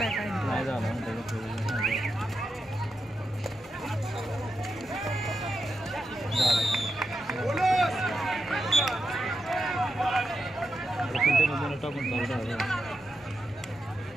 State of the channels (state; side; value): normal; both; correlation 0.86